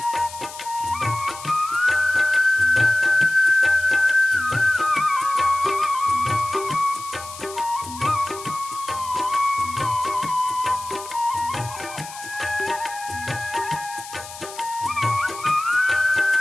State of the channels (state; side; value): noise; left; hiss, 14 dB below the sound